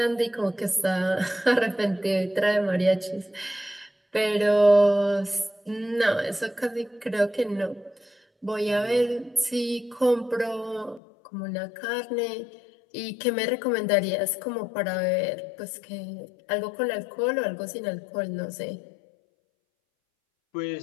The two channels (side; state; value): right; drops out; at 11.0 s